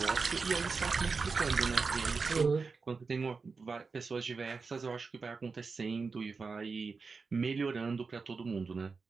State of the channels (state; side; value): quieter; left; 4.6 dB